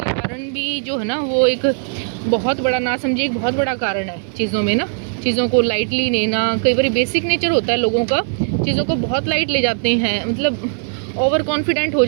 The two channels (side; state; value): left; silent; 67 dB below the other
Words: कारण भी जो है ना वो एक बहुत बड़ा, नासमझी एक बहुत बड़ा कारण है चीज़ों में ना, चीज़ों को लाइटली लेना। कई बार बेसिक नेचर होता है लोगों का, चीज़ों को बहुत लाइट ले जाते हैं, मतलब ओवर कॉन्फिडेंट हो